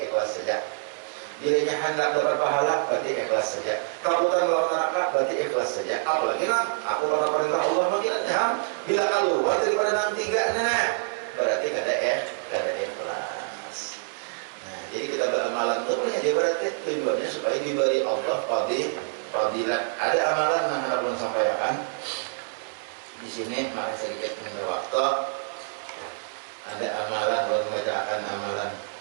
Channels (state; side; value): silent; left; 61 dB below the other